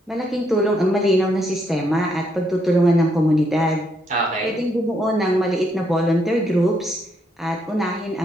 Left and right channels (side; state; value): both; normal; correlation 0.75